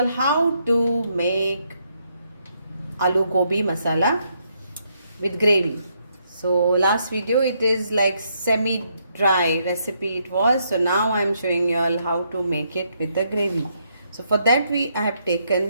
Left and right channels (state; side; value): inverted; both; correlation -0.75